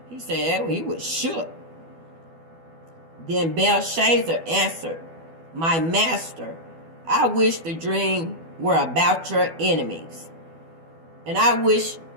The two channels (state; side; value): late; left; 12 ms